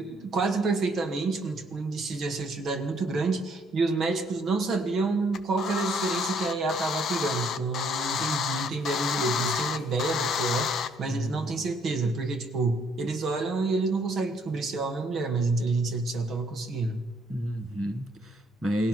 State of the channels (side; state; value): both; normal; correlation 0.66